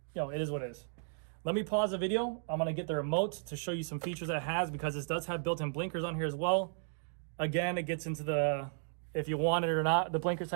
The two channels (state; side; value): silent; left; digital silence